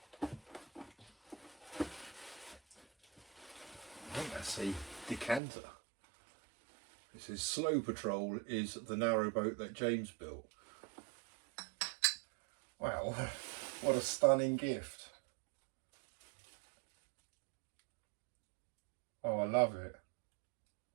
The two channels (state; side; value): drops out; left; at 5.4 s